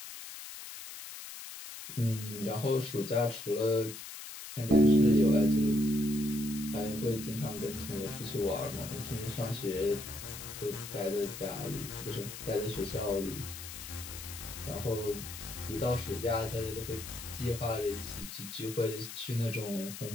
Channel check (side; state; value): left; noise; hiss, 11 dB below the sound